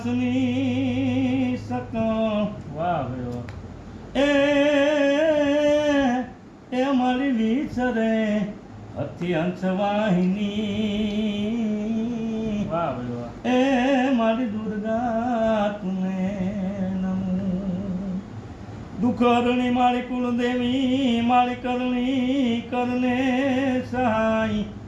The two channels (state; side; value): identical; both; correlation 1.00